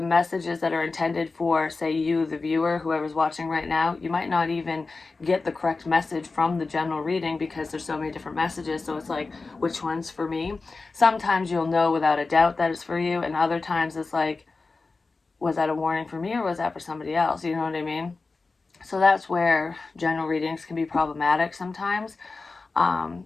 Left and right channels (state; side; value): quieter; right; 3.9 dB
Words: messages that are intended for, say, you, the viewer, whoever's watching right now, you might not even get the correct message from the general reading, because there's so many different messages. So it's like, which one's for me? Sometimes you'll know without a doubt that it's for you, and other times it's like, was that a warning for me or was that for somebody else? You know what I mean? So that's where general readings can be problematic sometimes,